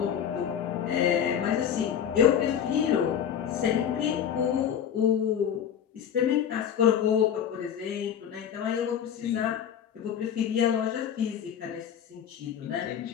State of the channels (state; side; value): quieter; right; 8.9 dB